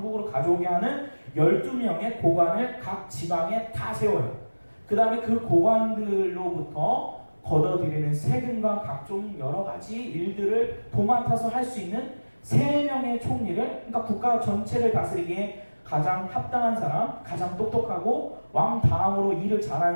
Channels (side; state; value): both; inverted; correlation -1.00